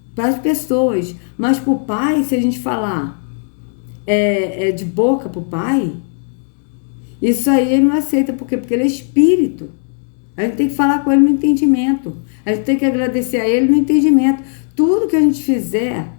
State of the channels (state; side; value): silent; right; digital silence